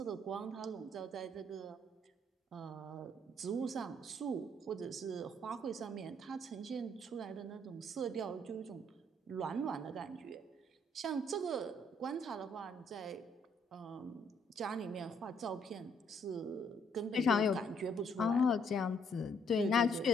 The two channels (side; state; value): both; normal; correlation 0.68